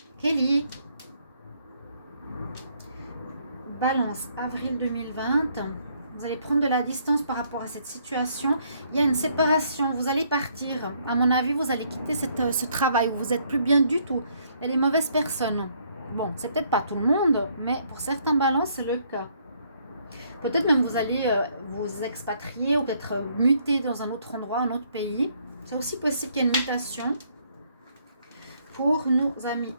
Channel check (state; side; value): inverted; both; correlation -0.68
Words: Kelly. Balance, avril 2020. Vous allez prendre de la distance par rapport à cette situation. Il y a une séparation. Vous allez partir. À mon avis, vous allez quitter ce travail où vous n'êtes plus bien du tout. Il y a des mauvaises personnes. Bon, c'est peut-être pas tout le monde, mais pour certains balances, c'est le cas. Peut-être même vous allez vous expatrier ou peut-être muter dans un autre endroit, un autre pays. C'est aussi possible qu'il y ait une mutation. Pour nos amis